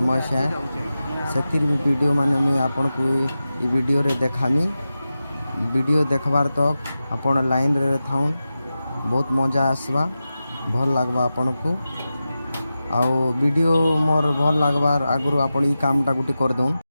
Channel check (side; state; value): both; inverted; correlation -0.93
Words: है, से वीडियो माने मुई आपन को वीडियो रे देखामी। वीडियो देखबार तक आपण लाइन रे थाउन, बहुत मजा आसवा, भल लगवा आपन को। आउ वीडियो मोर भल लगवार आगु आपण ई कामटा गुटी कर दउन।